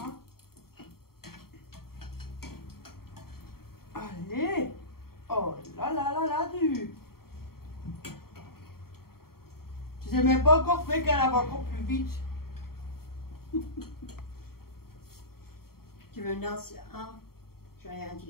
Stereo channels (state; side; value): late; right; 0.94 ms